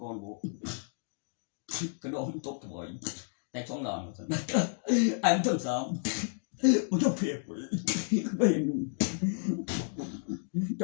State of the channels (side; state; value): right; silent; 57 dB below the other